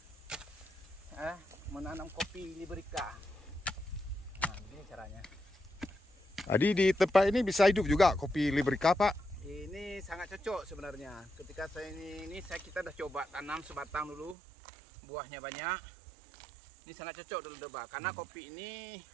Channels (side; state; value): left; drops out; at 14.4 s